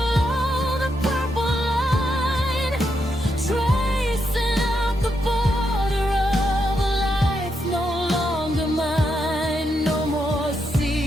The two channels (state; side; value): normal; both; correlation 0.82